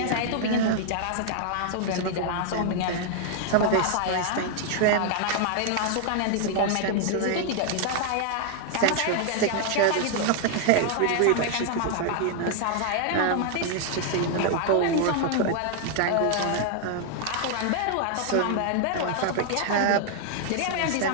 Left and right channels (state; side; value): different; both; correlation 0.00